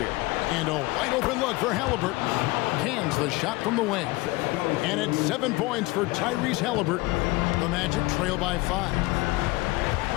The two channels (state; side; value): quieter; right; 21.7 dB